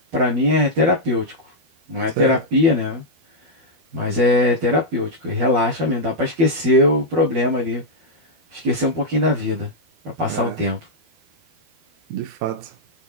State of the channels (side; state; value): left; late; 12 ms